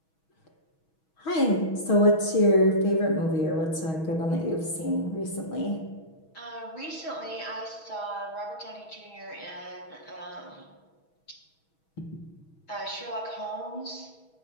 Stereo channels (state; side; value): late; right; 6.2 ms